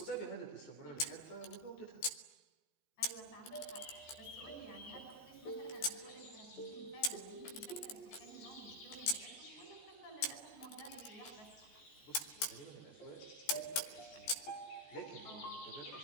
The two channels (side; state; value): right; late; 14 ms